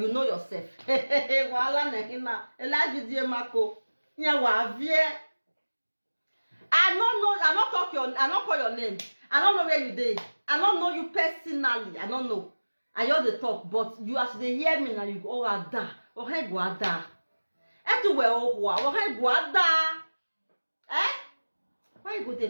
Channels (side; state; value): both; inverted; correlation -1.00